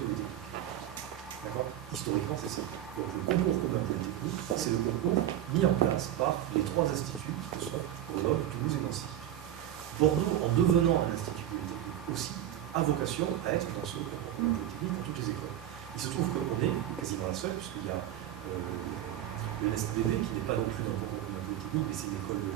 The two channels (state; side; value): quieter; left; 11.7 dB